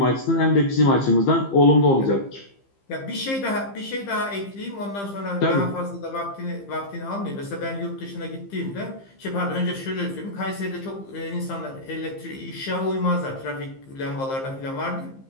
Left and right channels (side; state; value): right; late; 15 ms